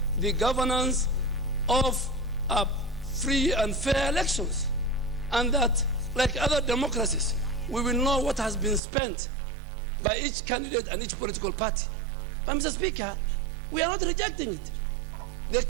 the governance of free and fair elections, and that, like other democracies, we will know what has been spent by each candidate and each political party. But, Mr. Speaker, we are not rejecting it. The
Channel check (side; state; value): left; drops out; at 8.8 s